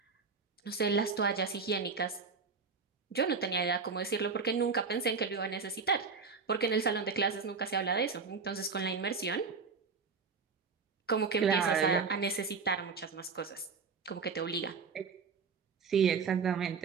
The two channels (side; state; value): left; quieter; 5.0 dB